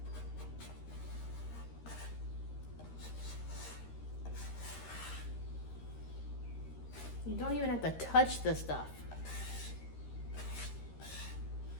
You don't even have to touch the stuff.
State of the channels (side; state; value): right; late; 13 ms